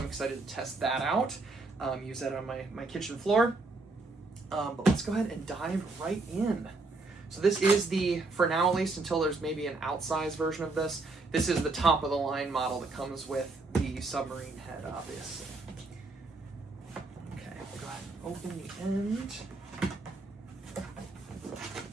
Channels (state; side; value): quieter; left; 3.5 dB